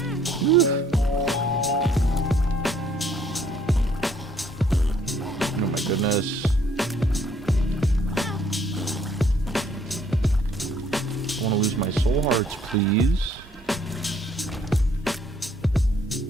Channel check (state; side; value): normal; both; correlation 0.64